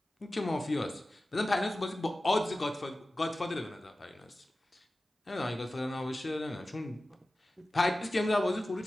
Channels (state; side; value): normal; both; correlation 0.96